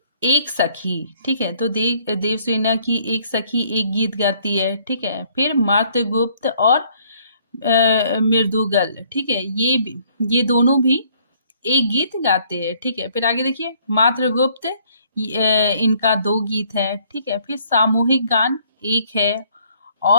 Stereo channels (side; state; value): both; inverted; correlation -0.63